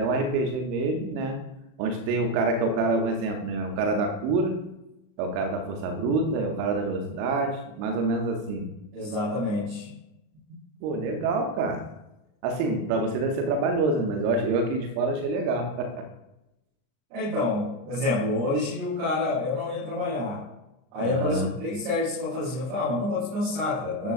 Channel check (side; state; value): left; late; 38 ms